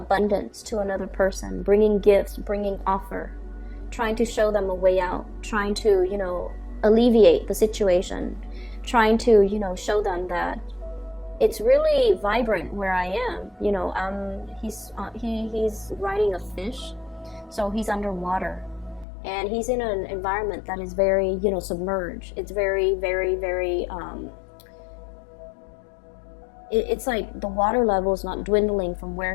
to another person, bringing gifts, bringing offer, trying to show them a way out, trying to, you know, alleviate the situation, trying to, you know, show them that it's really vibrant where I am. You know, he's riding a fish, so he's underwater, and he's in an environment that is very, you know, submerged. It's very, very, very it's like the water level is not dwindling from where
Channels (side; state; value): right; drops out; at 19.1 s